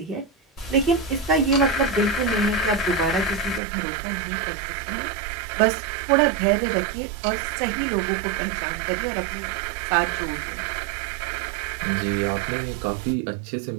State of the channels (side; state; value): left; drops out; at 3.6 s